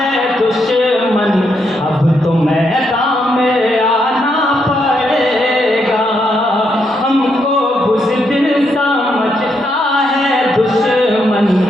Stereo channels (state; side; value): normal; both; correlation 0.78